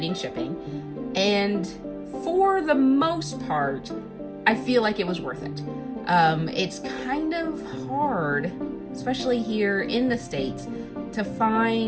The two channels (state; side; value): identical; both; correlation 1.00